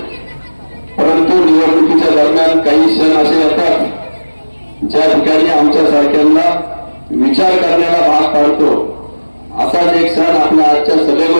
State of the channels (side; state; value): both; inverted; correlation -1.00